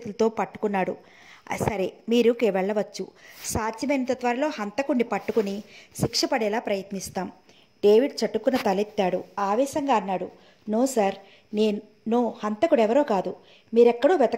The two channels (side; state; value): both; identical; correlation 1.00